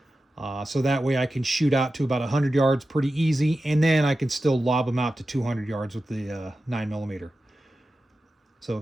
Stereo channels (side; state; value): both; normal; correlation 0.93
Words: So that way I can shoot out to about 100 yards pretty easy, and then I can still lob them out to 200 yards with the 9mm. So